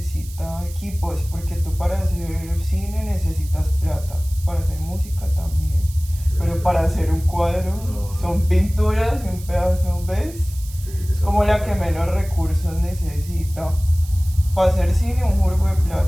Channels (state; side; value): noise; right; hiss, 18 dB below the sound